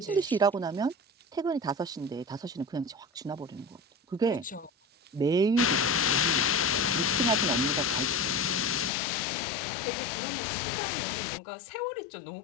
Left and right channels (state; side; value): drops out; right; at 8.9 s